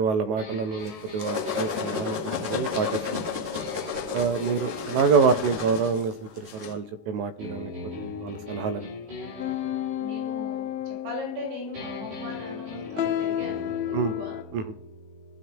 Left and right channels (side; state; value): left; late; 19 ms